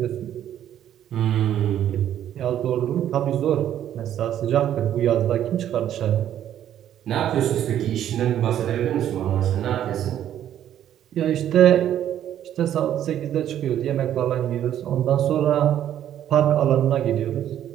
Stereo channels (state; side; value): quieter; left; 10.9 dB